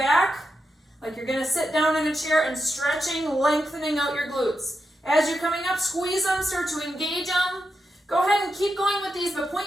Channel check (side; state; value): both; normal; correlation 0.87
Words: like you're going to sit down in a chair and stretching, lengthening out your glutes. As you're coming up, squeeze them, start to engage them. Go ahead and keep going with these, but